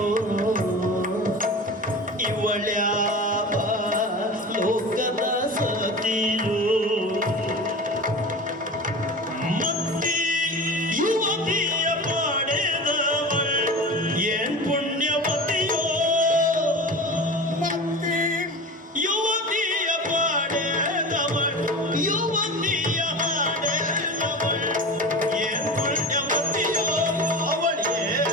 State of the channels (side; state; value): both; normal; correlation 0.32